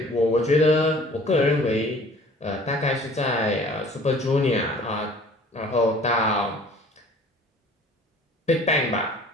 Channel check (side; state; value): both; normal; correlation 0.50